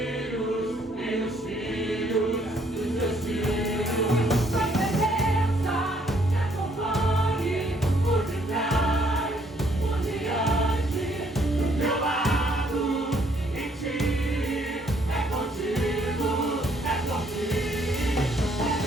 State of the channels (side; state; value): both; normal; correlation 0.67